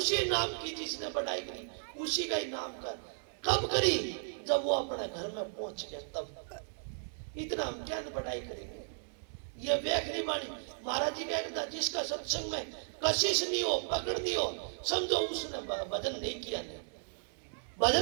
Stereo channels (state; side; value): silent; left; digital silence